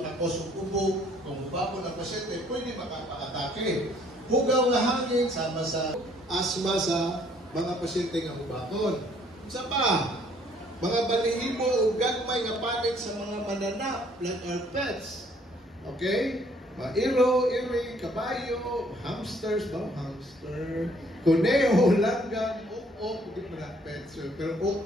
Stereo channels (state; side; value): normal; both; correlation 0.62